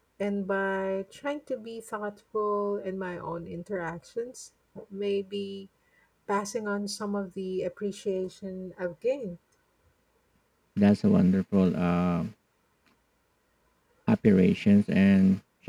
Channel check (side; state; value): both; identical; correlation 1.00